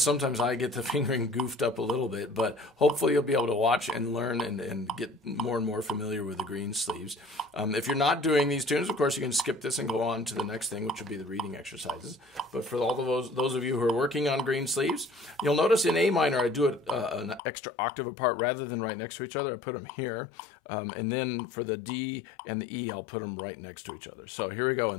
I get the fingering goofed up a little bit, but hopefully you'll be able to watch and learn and get more and more familiar with the Greensleeves. If you're not doing these tunes, of course, you can skip this and go on to the next thing, which would be the reading exercises. But for all of those of you who are working on Greensleeves, you'll notice in A minor I do it an extra octave apart rather than right next to each other. I put them here. And then for the D and the E, I'll put them right next to each other. So here we go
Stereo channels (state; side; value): drops out; right; at 17.4 s